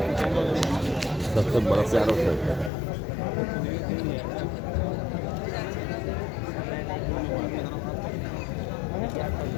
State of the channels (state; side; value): drops out; right; at 2.7 s